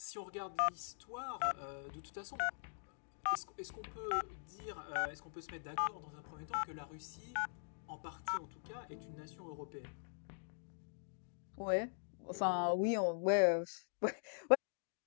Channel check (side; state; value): right; silent; digital silence